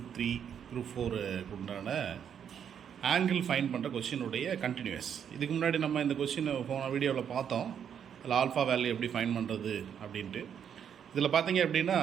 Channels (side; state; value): left; quieter; 8.3 dB